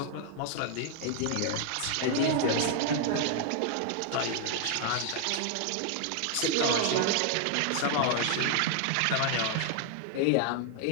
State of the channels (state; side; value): different; both; correlation 0.00